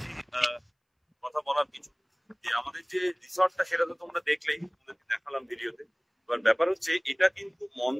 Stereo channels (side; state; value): both; identical; correlation 1.00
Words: কথা বলার কিছু। যে আমাদের যে রিসর্টটা সেটা তো তোমরা দেখলেই, তোমাদেরকে দেখালাম ভিডিওতে। এবার ব্যাপার হচ্ছে, এটা কিন্তু